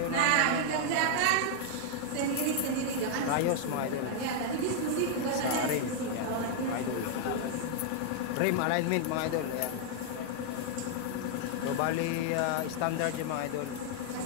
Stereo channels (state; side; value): different; both; correlation 0.00